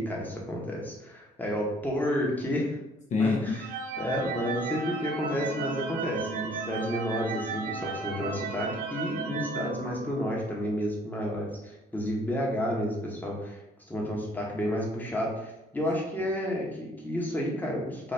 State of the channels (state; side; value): normal; both; correlation 0.59